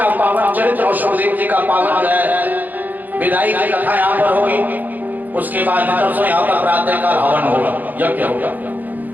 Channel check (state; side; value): late; left; 0.083 ms